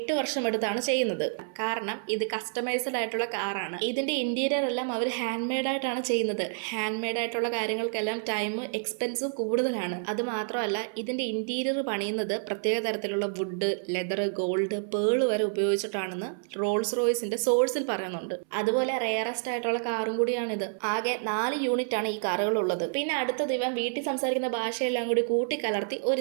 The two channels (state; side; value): silent; left; 59 dB below the other